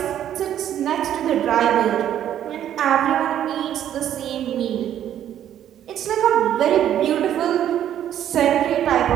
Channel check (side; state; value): left; quieter; 10.7 dB